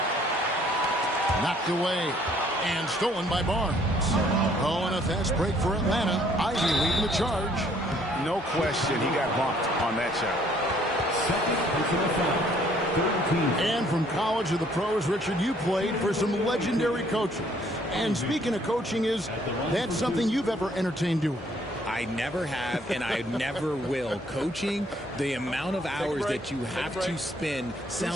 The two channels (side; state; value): both; normal; correlation 0.62